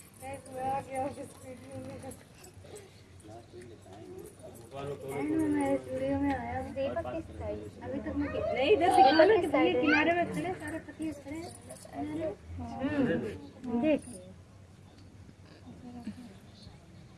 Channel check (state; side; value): identical; both; correlation 1.00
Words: अभी तक मैं नहीं इधर दिखा ना कि भैया किनारे में खड़े सारे पतिये खड़े देख